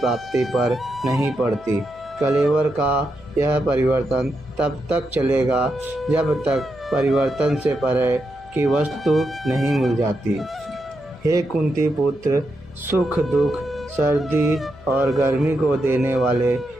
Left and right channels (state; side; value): noise; left; hum, 24 dB below the sound